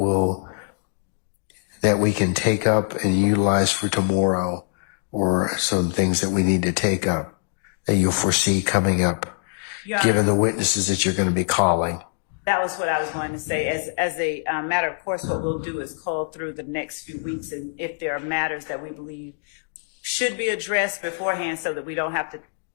we can take up and utilize for tomorrow, or some things that we need to take up that you'll foresee coming up, given the witnesses that you're going to be calling? That was what I was going to say. As a matter of course, what we'll do is call through the next few weeks, and if there are matters that we believe should be addressed beforehand so that we don't have to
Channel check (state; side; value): silent; right; digital silence